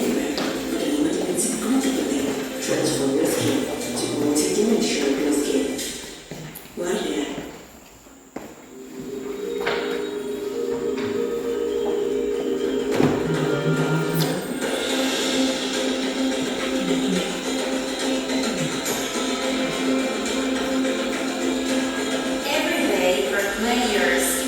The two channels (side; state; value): both; identical; correlation 1.00